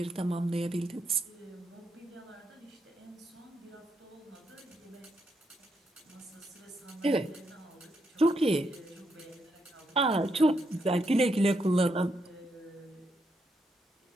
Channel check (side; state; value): both; normal; correlation 0.80